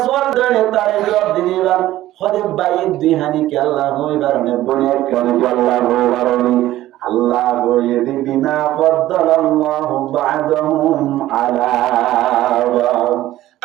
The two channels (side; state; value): left; quieter; 14.8 dB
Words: সোয়াল ধরে তারে জবাব দিবা হলে ভাই দুই হানি কে আল্লাহ হইবার নে বনে একখানি কে আল্লাহ হইবার আল্লাহ বলে বিমা ফাদ্দালাল্লাহু বা'দাহুম আলা বা'দ